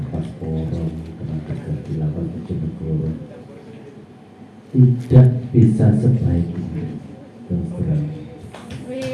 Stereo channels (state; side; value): identical; both; correlation 1.00